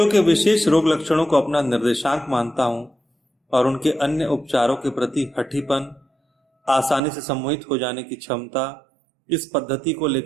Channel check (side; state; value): left; drops out; at 7.0 s